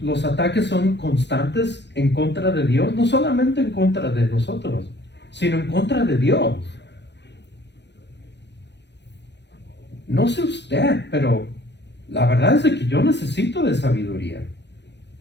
ataques son constantes en contra de Dios, no solamente en contra de nosotros, sino en contra de Dios. No sé usted, pero la verdad es que yo necesito de sabiduría.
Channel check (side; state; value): right; late; 0.50 ms